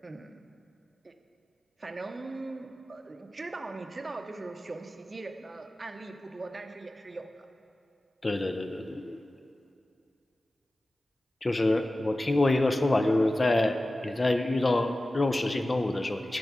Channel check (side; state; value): both; normal; correlation 0.96